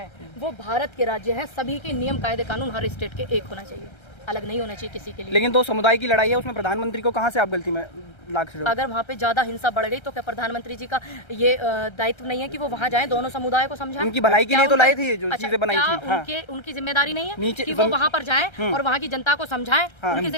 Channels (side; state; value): right; late; 1.3 ms